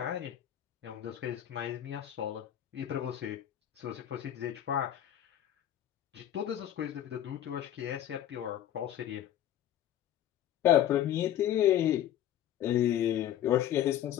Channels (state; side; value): quieter; right; 11.6 dB